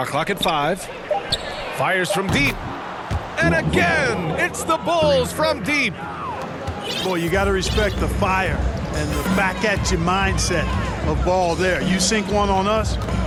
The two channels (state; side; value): identical; both; correlation 1.00